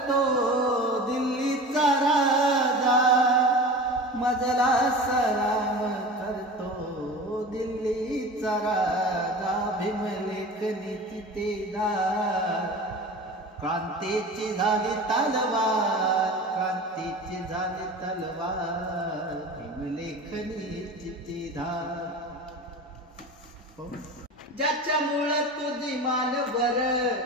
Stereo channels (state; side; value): normal; both; correlation 0.34